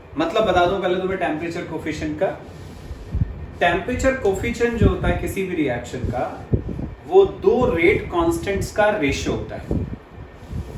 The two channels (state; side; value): identical; both; correlation 1.00